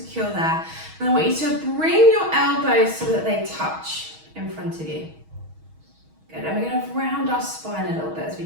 there. And I want you to bring your elbows so that they touch in front of you. Good, and we're going to round our spine a little bit as we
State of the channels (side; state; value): left; late; 6.3 ms